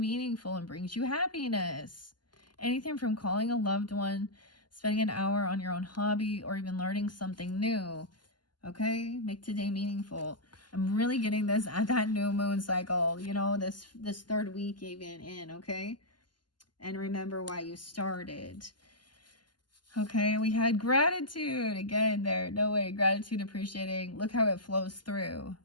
and brings you happiness. Anything from calling a loved one, spending an hour on your own hobby, or even learning something new. Okay, make today meaningful. I'm really getting this at that new moon cycle, you know, this third week even in, okay? And remember why you started. Okay, we had gratitude again there. No way, gratitude, appreciating. Look how it flows through.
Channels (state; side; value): late; right; 0.71 ms